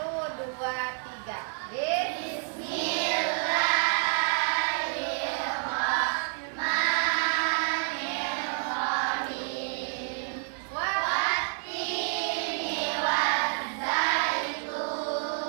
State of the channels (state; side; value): silent; left; 59 dB below the other